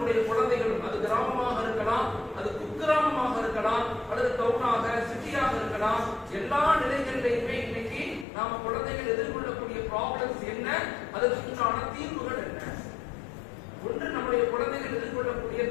குழந்தைகளும், அது கிராமமாக இருக்கலாம், அது குக்கிராமமாக இருக்கலாம், அல்லது டவுனாக, சிட்டியாக இருக்கலாம், எல்லா நிலைகளிலையுமே இன்னைக்கு நாம குழந்தைகள் எதிர்கொள்ளக்கூடிய ப்ராப்ளம்ஸ் என்ன, அதற்குண்டான தீர்வுகள் என்ன. ஒன்று, நம்முடைய குழந்தைகள் எதிர்கொள்ளக்கூடிய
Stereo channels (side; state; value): right; drops out; at 8.2 s